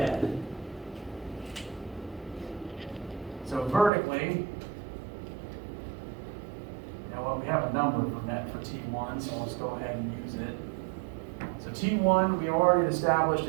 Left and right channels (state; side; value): drops out; left; at 3.9 s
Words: So vertically, well, we have a number for net for T1, so let's go ahead and use it. So T1 we already established